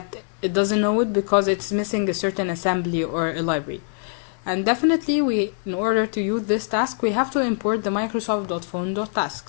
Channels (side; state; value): right; silent; digital silence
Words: doesn't know it because it's missing a certain assembly or a library. And definitely in order to use this task, we have to import the